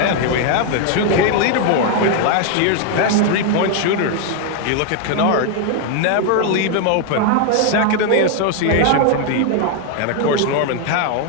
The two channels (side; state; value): both; different; correlation 0.00